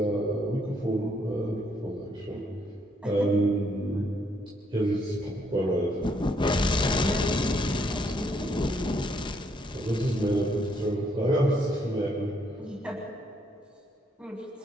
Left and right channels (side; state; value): both; normal; correlation 0.71